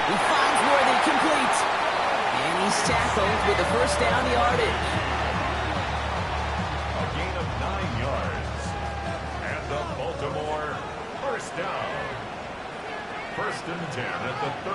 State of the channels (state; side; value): identical; both; correlation 1.00